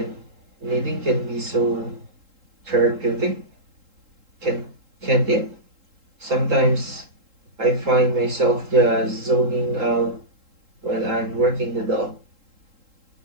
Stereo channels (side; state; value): left; late; 3.8 ms